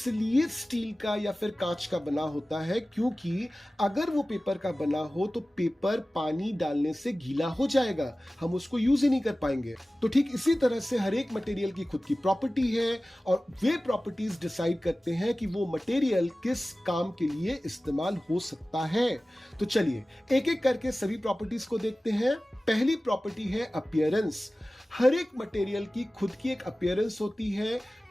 स्टील का या फिर कांच का बना होता है क्योंकि अगर वो पेपर का बना हो तो पेपर पानी डालने से गीला हो जाएगा, हम उसको यूज ही नहीं कर पाएंगे। तो ठीक इसी तरह से हर एक मटेरियल की खुद की प्रॉपर्टी है और वे प्रॉपर्टीज डिसाइड करते हैं कि वो मटेरियल किस काम के लिए इस्तेमाल हो सकता है। तो चलिए एक एक करके सभी प्रॉपर्टीज को देखते हैं। पहली प्रॉपर्टी है अपीयरेंस। हर एक मटेरियल की खुद की एक अपीयरेंस होती है।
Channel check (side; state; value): both; normal; correlation 0.97